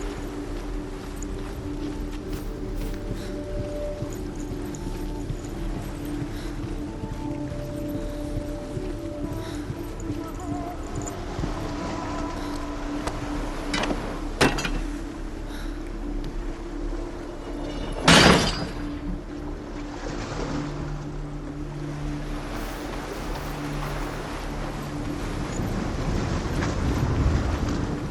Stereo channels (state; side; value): identical; both; correlation 1.00